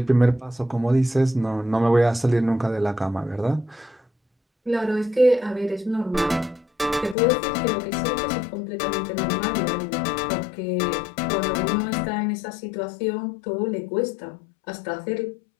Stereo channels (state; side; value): drops out; right; at 7.2 s